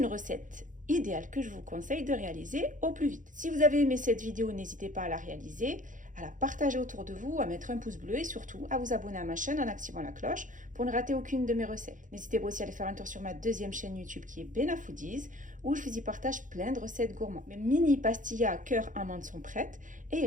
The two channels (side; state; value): left; late; 0.38 ms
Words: recette idéale que je vous conseille de réaliser au plus vite. Si vous avez aimé cette vidéo, n'hésitez pas à la réaliser, à la partager autour de vous, à mettre un pouce bleu et surtout à vous abonner à ma chaîne en activant la cloche pour ne rater aucune de mes recettes. N'hésitez pas aussi à aller faire un tour sur ma deuxième chaîne YouTube qui est Bena Foodies où je vous y partage plein de recettes gourmandes. Mes mini pastillas cœur amande sont prêtes et il